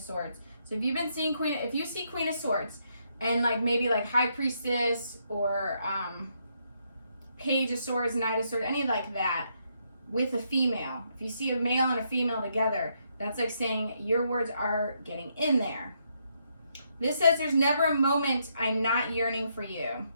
Swords. So if you've been seeing if you see Queen of Swords and like maybe like High Priestess or Page of Swords, Knight of Swords, any like that with a female. If you see a male and a female together, that's like saying your words are getting in there. This says there's never a moment I'm not yearning for you.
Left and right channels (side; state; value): both; inverted; correlation -0.76